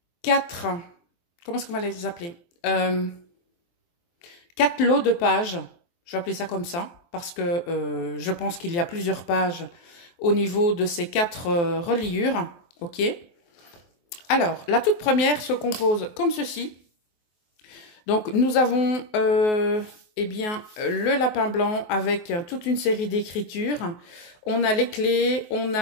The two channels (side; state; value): right; late; 23 ms